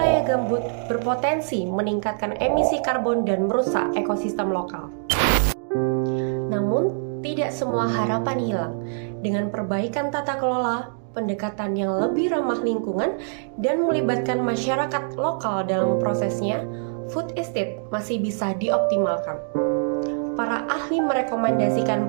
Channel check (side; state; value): left; silent; digital silence